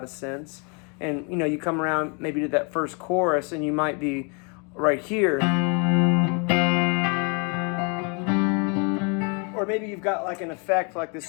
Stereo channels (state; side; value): quieter; right; 34.9 dB